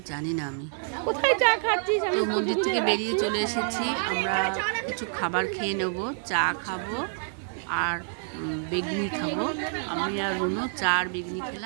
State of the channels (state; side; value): silent; left; 60 dB below the other